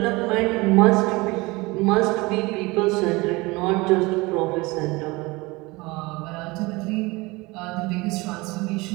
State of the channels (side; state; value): left; quieter; 23.3 dB